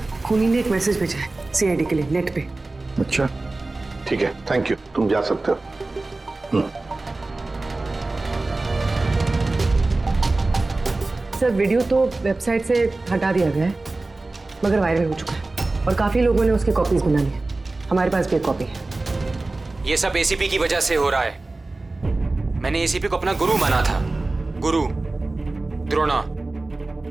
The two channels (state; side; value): quieter; left; 3.2 dB